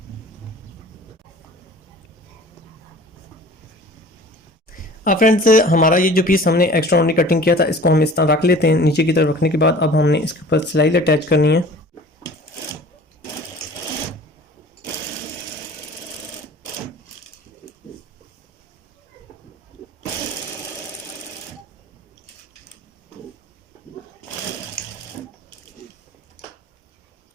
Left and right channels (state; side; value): normal; both; correlation 0.44